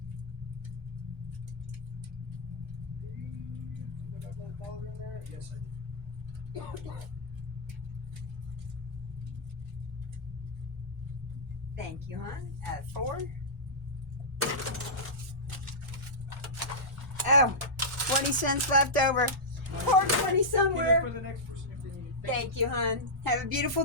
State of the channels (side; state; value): both; normal; correlation -0.12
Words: Yes, I did. Thank you, hon. At 4. Oh, 20 cents left over. Pour 20 Give it somewhere. for the next person if they need it. Thank you, hon. Have a beautiful